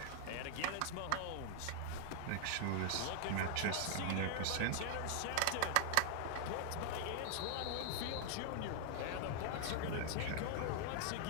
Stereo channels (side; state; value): both; different; correlation 0.00